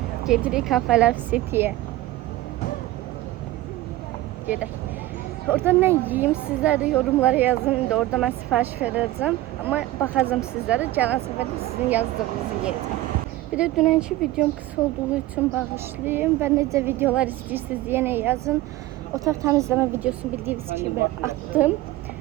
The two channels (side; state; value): left; quieter; 16.4 dB